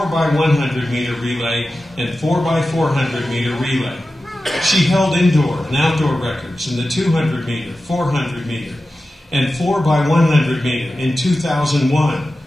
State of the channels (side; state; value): both; normal; correlation 0.93